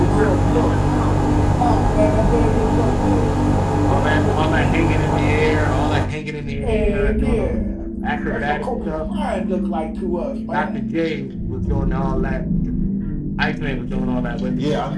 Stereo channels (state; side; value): identical; both; correlation 1.00